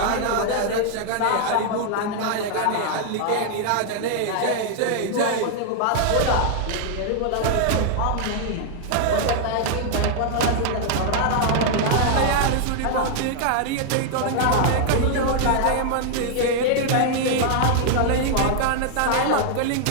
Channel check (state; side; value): different; both; correlation -0.01